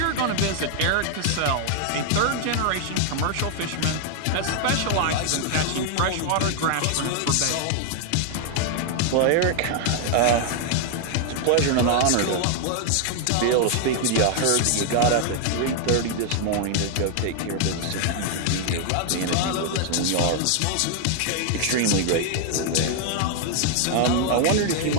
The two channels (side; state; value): both; different; correlation 0.00